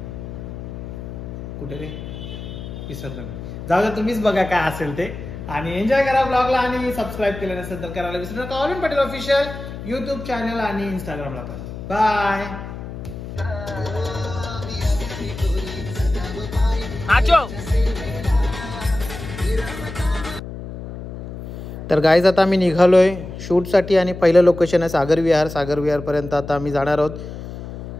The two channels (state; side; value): noise; left; hum, 10 dB below the sound